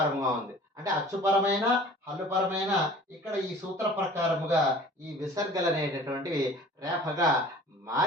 ఉంది. అంటే అచ్చుపరమైన హల్లుపరమైన ఇక్కడ ఈ సూత్ర ప్రకారముగా ఈ విసర్గలు అనేటటువంటివి రేఫగా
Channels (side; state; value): both; normal; correlation 0.46